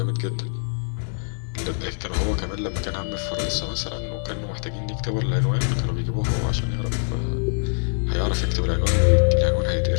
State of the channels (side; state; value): right; silent; digital silence